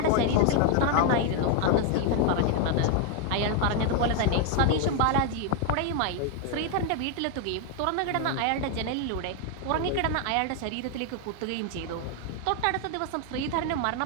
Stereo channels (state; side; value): different; both; correlation 0.01